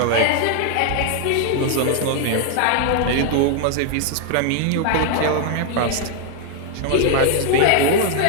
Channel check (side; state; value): both; different; correlation 0.00